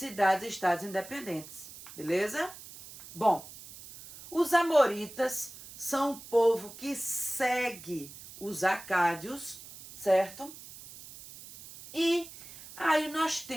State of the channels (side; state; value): right; noise; hiss, 16 dB below the sound